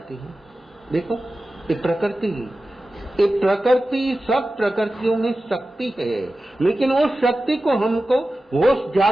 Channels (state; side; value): normal; both; correlation 0.94